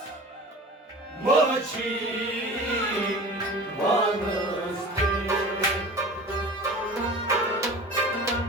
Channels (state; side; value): normal; both; correlation 0.38